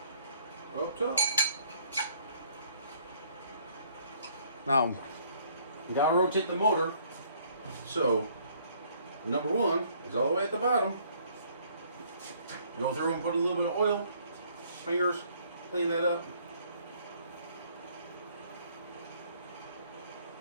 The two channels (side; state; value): both; inverted; correlation -0.62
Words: up top. Now, you gotta rotate the motor. So, number 1 is all the way at the bottom. Go through and put a little bit of oil, fingers, clean that up.